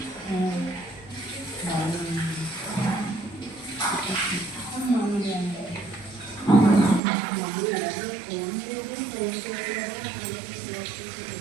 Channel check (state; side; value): drops out; left; at 7.0 s